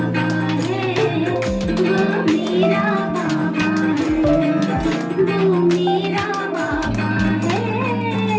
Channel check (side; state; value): both; identical; correlation 1.00